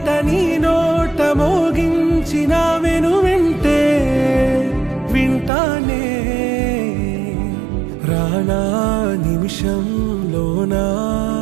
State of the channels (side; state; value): left; drops out; at 5.5 s